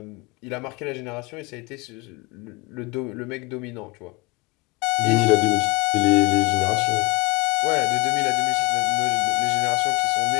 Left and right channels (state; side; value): quieter; right; 25.6 dB